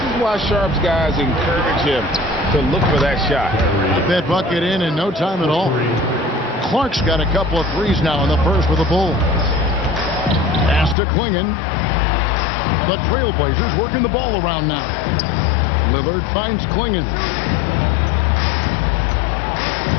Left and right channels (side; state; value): right; drops out; at 11.0 s